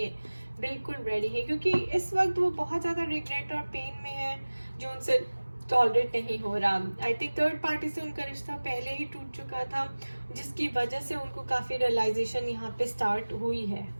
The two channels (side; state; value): both; inverted; correlation -1.00